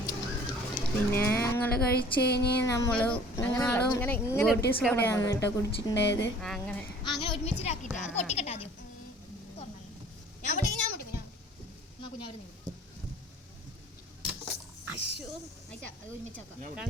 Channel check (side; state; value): both; normal; correlation 0.49